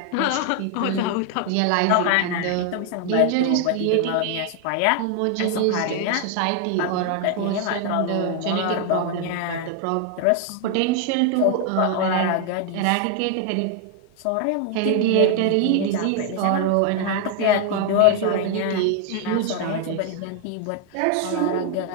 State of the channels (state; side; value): different; both; correlation 0.00